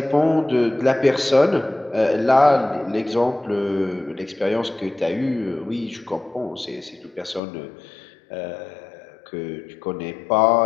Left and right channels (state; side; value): drops out; right; at 7.4 s